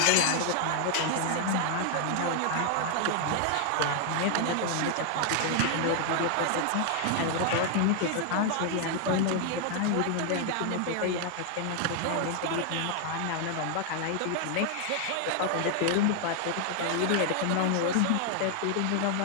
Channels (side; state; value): both; different; correlation 0.00